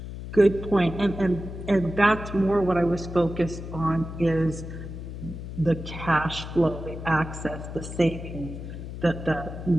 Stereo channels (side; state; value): left; noise; hum, 9 dB below the sound